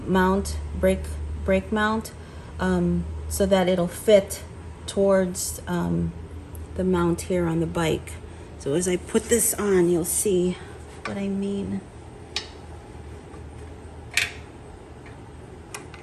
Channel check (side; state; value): both; identical; correlation 1.00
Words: mount, so that it'll fit towards the mount here on the bike. So as I put this on, you'll see what I mean.